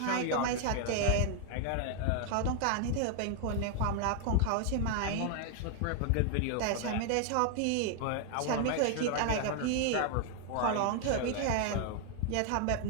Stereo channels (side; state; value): both; different; correlation 0.00